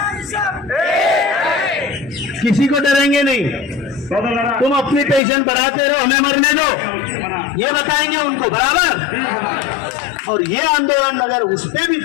किसी को डरेंगे नहीं। तुम अपनी पेंशन बढ़ाते रहो, हमें मरने दो, ये बताएंगे उनको, बराबर? और ये आंदोलन अगर उस पे भी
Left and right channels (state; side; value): drops out; right; at 5.2 s